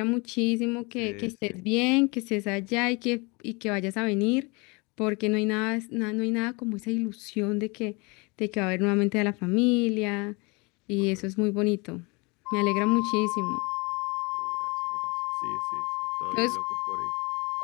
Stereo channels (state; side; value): quieter; right; 28.3 dB